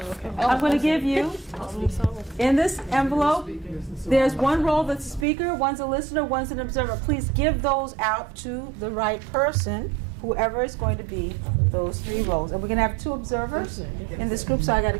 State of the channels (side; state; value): left; drops out; at 5.2 s